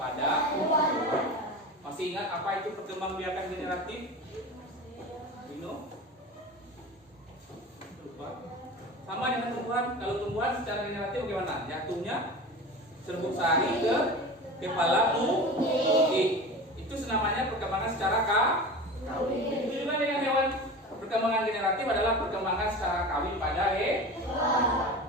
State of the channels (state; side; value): normal; both; correlation 0.32